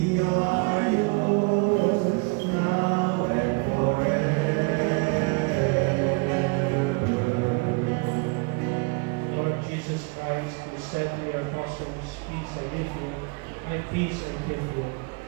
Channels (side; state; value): left; quieter; 30.9 dB